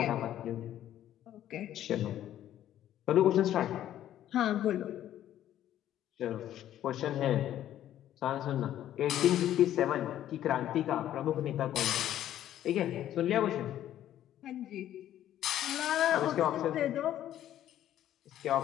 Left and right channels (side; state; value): right; quieter; 12.0 dB